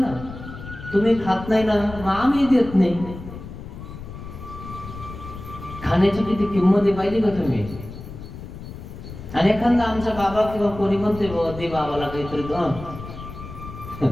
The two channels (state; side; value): noise; left; rumble, 12 dB below the sound